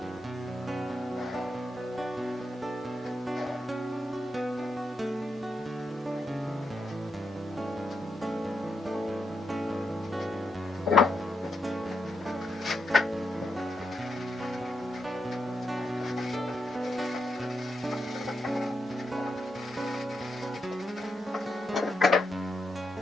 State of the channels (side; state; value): both; normal; correlation 0.83